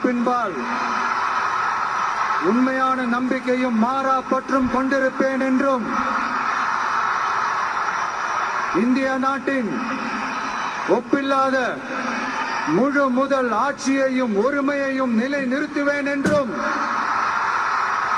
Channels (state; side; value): identical; both; correlation 1.00